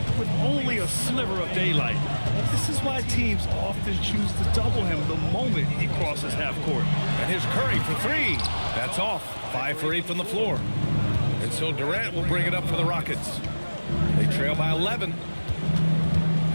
with only a sliver of daylight. This is why teams often choose to double him the moment he crosses half court. And here's Curry for three. That's off. 5 for 8 from the floor. And so Durant will bring it up for the Rockets. They trail by 11.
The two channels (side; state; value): both; inverted; correlation -1.00